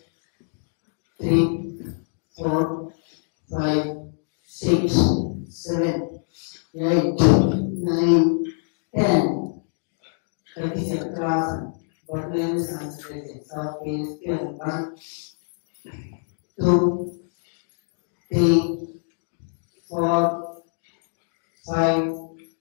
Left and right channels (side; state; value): right; silent; digital silence